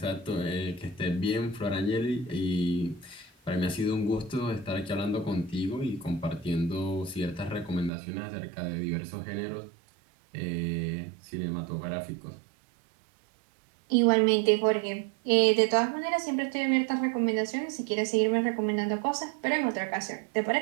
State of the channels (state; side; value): drops out; left; at 7.9 s